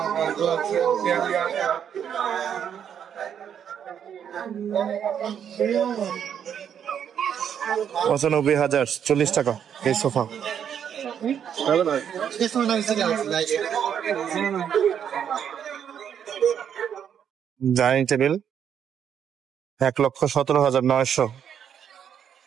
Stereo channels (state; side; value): quieter; left; 8.5 dB